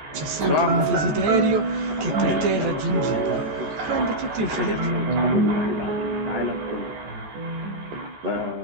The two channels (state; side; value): late; left; 14 ms